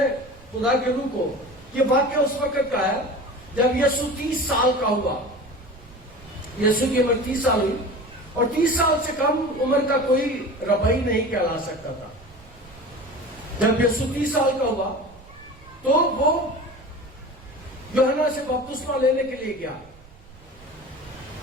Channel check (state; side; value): noise; right; rumble, 23 dB below the sound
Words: خدا کے روح کو, یہ واقعہ اس وقت کا ہے جب یسوع 30 سال کا ہوا. یسوع کی عمر 30 سال ہوئی اور 30 سال سے کم عمر کا کوئی ربی نہیں کہلا سکتا تھا. جب یسوع 30 سال کا ہوا تو وہ یوحنا سے بپتسمہ لینے کے لیے گیا.